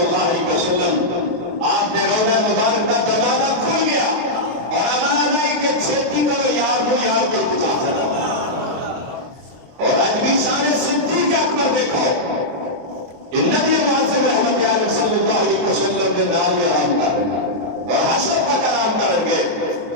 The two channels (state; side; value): late; left; 23 ms